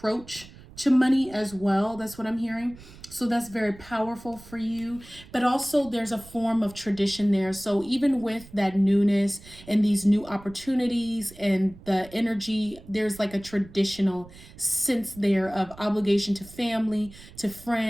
to money as well. That's what I'm hearing. So that's very powerful for you. But also there's a form of tradition there. So even with that newness and these new opportunities and the energy, there's like a traditional sense there of obligation to family, to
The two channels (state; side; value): noise; right; rumble, 20 dB below the sound